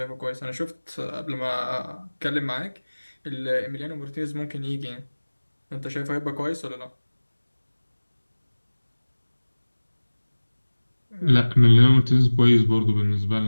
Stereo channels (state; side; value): inverted; both; correlation -1.00